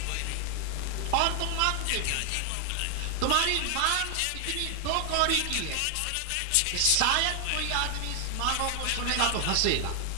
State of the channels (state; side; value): different; both; correlation 0.00